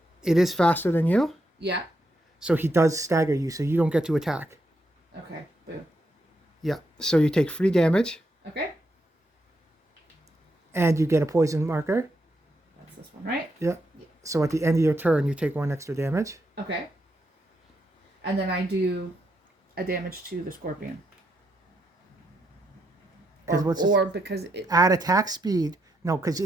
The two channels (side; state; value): both; normal; correlation 0.80